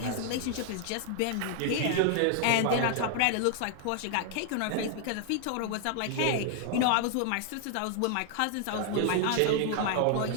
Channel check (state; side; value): different; both; correlation 0.00